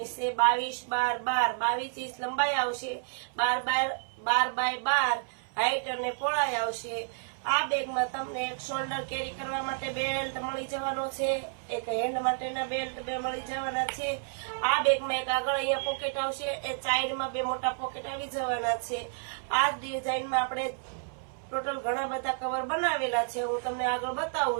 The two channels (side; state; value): left; silent; 57 dB below the other